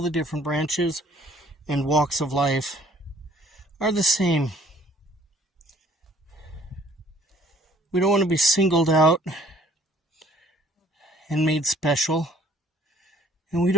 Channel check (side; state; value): both; normal; correlation 0.56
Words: the different branches and walks of life are the same. We don't want to be singled out and made special. And we